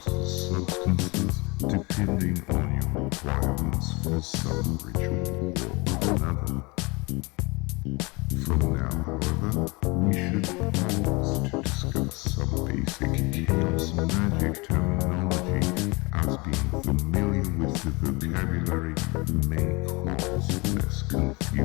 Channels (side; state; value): right; quieter; 26.2 dB